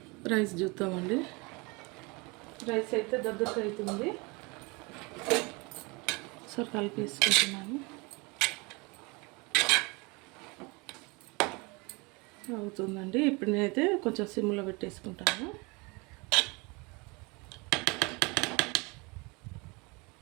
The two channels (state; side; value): quieter; left; 27.5 dB